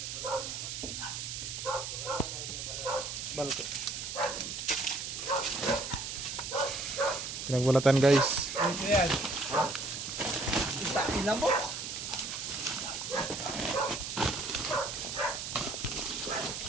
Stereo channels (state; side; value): noise; right; hiss, 5 dB below the sound